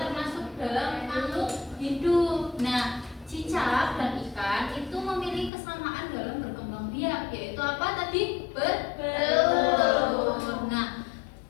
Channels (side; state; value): right; drops out; at 5.5 s